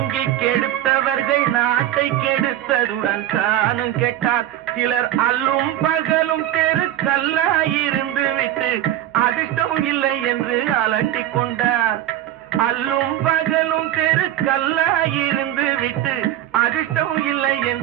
கெடுத்தவர்கள் நாட்டை கெடுத்ததுடன் தானும் கெட்டார். சிலர் அல்லும் பகலும் தெருக்கல்லாயிருந்து விட்டு அதிர்ஷ்டம் இல்லை என்று அலட்டிக் கொண்டார். அல்லும் பகலும் தெருக்கல்லாயிருந்து விட்டு அதிர்ஷ்டம் இல்லை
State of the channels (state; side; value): quieter; left; 12.7 dB